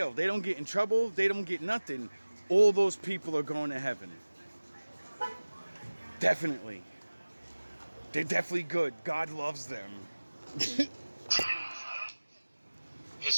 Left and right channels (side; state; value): both; inverted; correlation -1.00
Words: They don't get in trouble. They don't get nothing. All those people are going to heaven. Definitely. They're definitely good. God loves them.